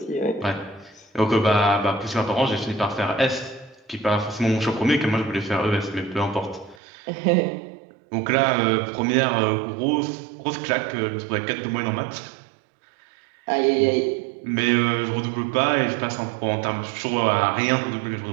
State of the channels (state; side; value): drops out; left; at 6.8 s